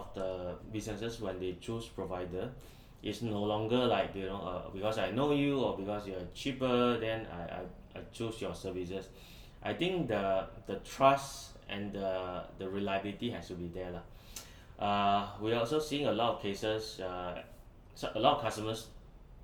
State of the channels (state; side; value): identical; both; correlation 1.00